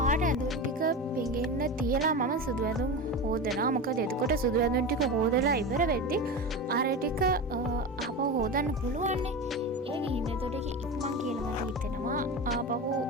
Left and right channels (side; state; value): both; normal; correlation 0.24